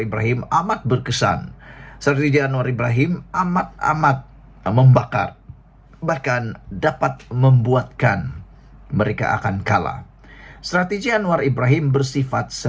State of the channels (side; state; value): both; identical; correlation 1.00